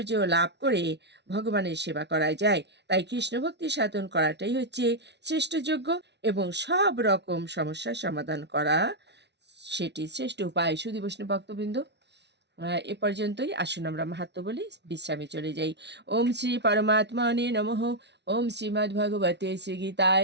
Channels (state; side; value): late; left; 0.50 ms